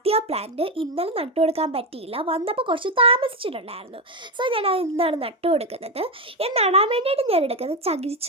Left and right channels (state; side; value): normal; both; correlation 0.12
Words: പ്ലാന്റ്. ഇന്നലെ നട്ടു കൊടുക്കാൻ പറ്റിയില്ല, വന്നപ്പോൾ കുറച്ച് താമസിച്ചിട്ടുണ്ടായിരുന്നു. സോ ഞാൻ അത് ഇന്നാണ് നട്ടു കൊടുക്കുന്നത്. ഞാൻ നടാൻ വേണ്ടിയിട്ട് ഞാൻ എടുക്കുന്നത്